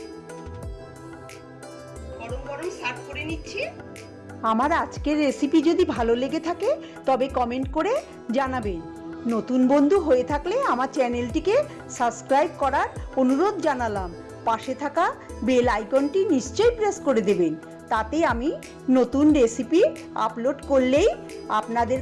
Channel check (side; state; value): both; identical; correlation 1.00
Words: গরম গরম সার্ভ করে নিচ্ছি। আমার আজকের রেসিপি যদি ভালো লেগে থাকে তবে কমেন্ট করে জানাবেন। নতুন বন্ধু হয়ে থাকলে আমার চ্যানেলটিকে সাবস্ক্রাইব করার অনুরোধ জানালাম। পাশে থাকা বেল আইকনটি নিশ্চয়ই প্রেস করে দেবেন, তাতে আমি নতুন রেসিপি আপলোড করলেই আপনাদের